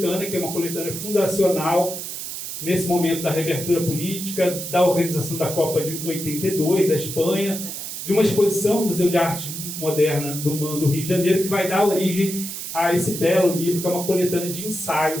que é uma coletânea fundacional, nesse momento da reabertura política, da organização da Copa de 82, da Espanha, de uma exposição no Museu de Arte Moderna do MAN do Rio de Janeiro, que vai dar origem a esse belo livro, que é uma coletânea de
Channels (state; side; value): noise; right; hiss, 7 dB below the sound